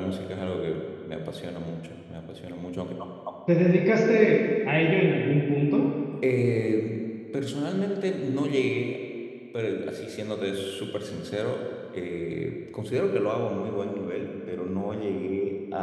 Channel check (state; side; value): identical; both; correlation 1.00